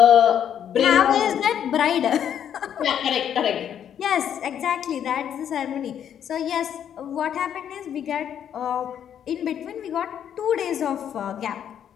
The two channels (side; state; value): right; quieter; 9.3 dB